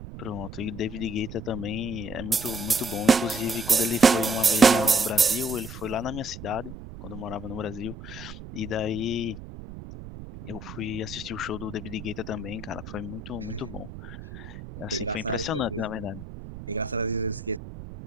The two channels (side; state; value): right; noise; rumble, 12 dB below the sound